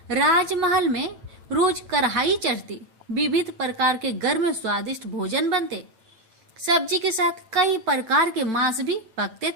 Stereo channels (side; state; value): left; late; 9.0 ms